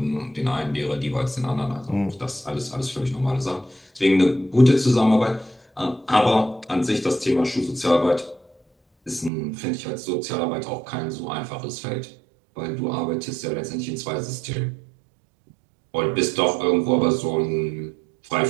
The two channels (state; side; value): drops out; left; at 9.3 s